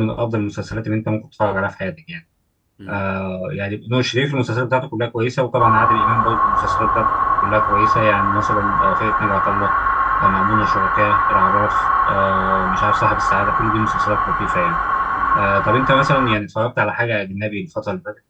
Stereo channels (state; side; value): identical; both; correlation 1.00